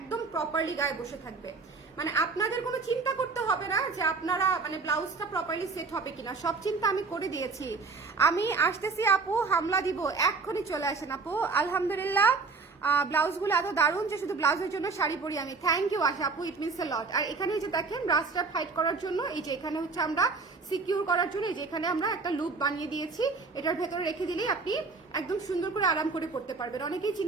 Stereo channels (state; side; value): quieter; left; 4.3 dB